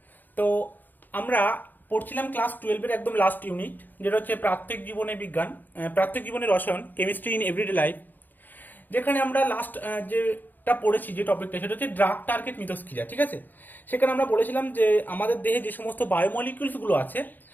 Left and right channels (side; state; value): right; late; 0.087 ms